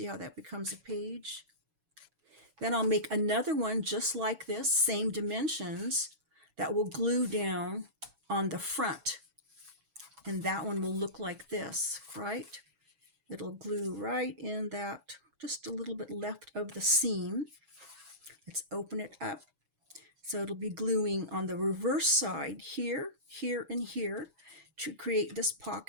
how that becomes a page? Then I'll make another one just like this, same dimensions, that will glue down on the front. And that one will look like this, right? It'll glue right in that, just a little bit left of the seam. Let's open it up. So it'll be gluing on the reverse side here, here, and here to create this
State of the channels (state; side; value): late; left; 7.2 ms